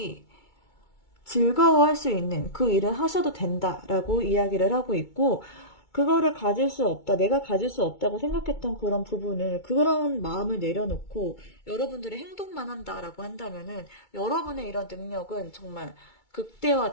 즐거워할 수 있는 그 일을 하셔도 된다라고 이야기를 하고 있고, 그거를 가질 수 없다, 내가 가질 수 없다고 생각했던 그런 부분을, 그런 마음을 내려놓고 여러분들의 행동만 한다라고 한다면은 여러분의 이런 능력은 정말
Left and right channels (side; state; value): right; late; 2.2 ms